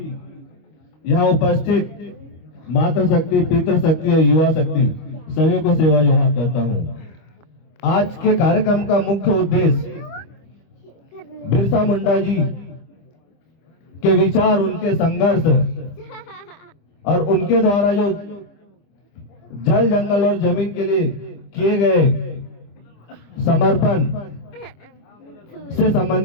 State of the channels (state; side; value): late; right; 25 ms